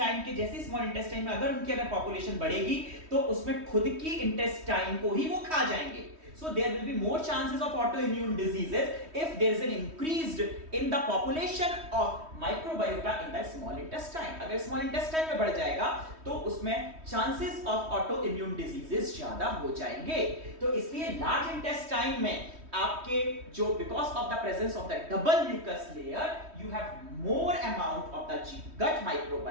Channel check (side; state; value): left; late; 3.1 ms